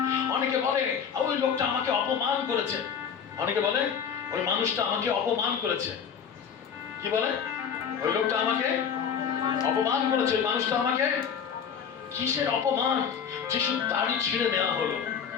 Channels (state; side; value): quieter; right; 7.3 dB